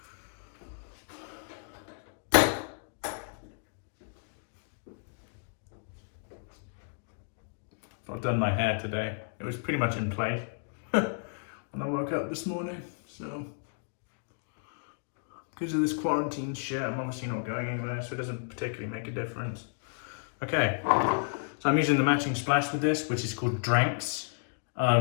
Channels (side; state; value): right; silent; digital silence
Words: I've done my hair today. It was pretty much in place when I woke up this morning, so because of this quarantine shit, I'm obviously not going anywhere, so it doesn't particularly make a difference. Okay, so I'm using the matching splash with this, which is called Dranks.